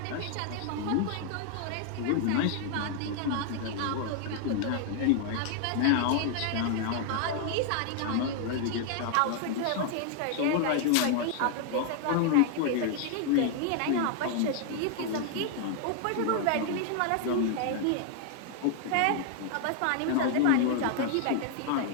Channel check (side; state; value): both; different; correlation 0.00